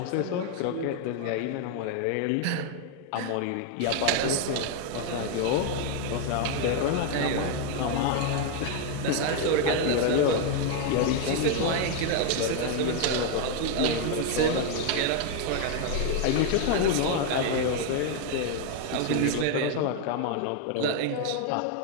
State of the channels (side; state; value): both; different; correlation 0.01